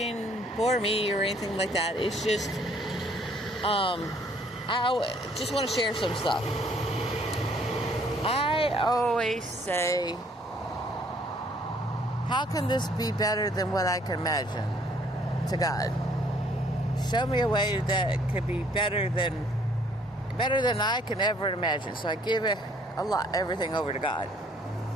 for me or anything like that. It's just, I just want to share some stuff. I always say, how can this be better than what I can imagine to God? Show me a way that could be better than I can ever imagine. So I give it everything over to God.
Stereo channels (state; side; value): normal; both; correlation 0.62